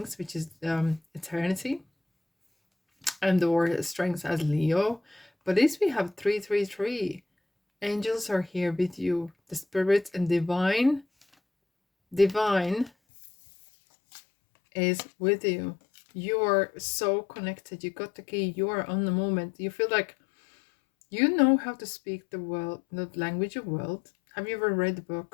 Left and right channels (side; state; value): right; drops out; at 12.9 s